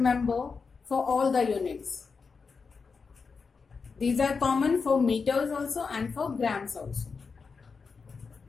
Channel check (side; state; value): right; quieter; 5.0 dB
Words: for all the units. These are common for meters also and for grams also.